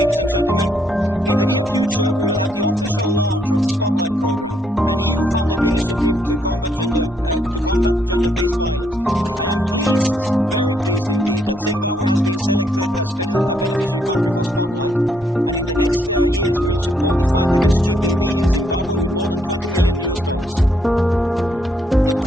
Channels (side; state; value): both; normal; correlation 0.73